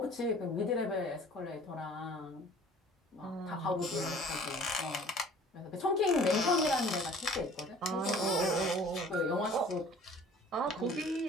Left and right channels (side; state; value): both; normal; correlation 0.49